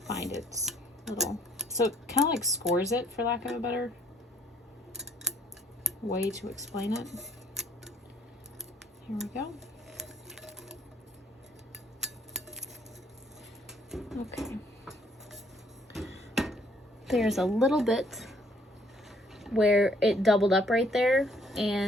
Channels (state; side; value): normal; both; correlation 0.64